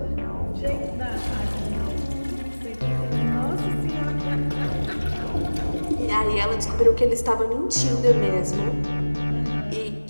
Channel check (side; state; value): both; inverted; correlation -1.00